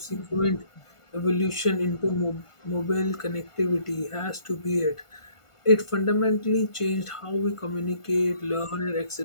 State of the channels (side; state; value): right; late; 1.5 ms